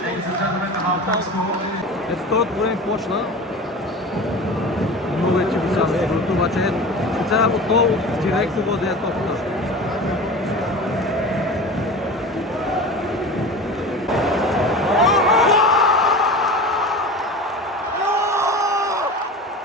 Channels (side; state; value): both; normal; correlation 0.33